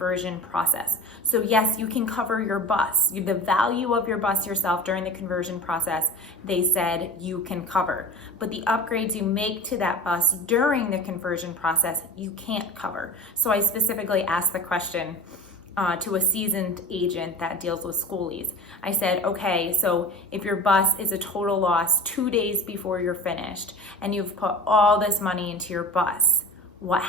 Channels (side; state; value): both; normal; correlation 0.35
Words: process. So yes, you can cover your bus. The value of your bus yourself during the conversion process, they said you can cover. But the upgrades you make to that bus during the conversion process, you can't cover. So I specifically asked the question to a seasoned agent that deals with Skoolies. I said, okay, so if your bus is a total loss 2 days before you're finished and you've put all this money into your bus, what